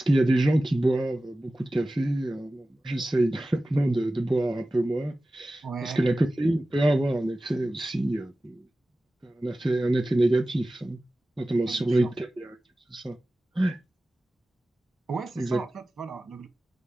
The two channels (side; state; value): both; normal; correlation 0.96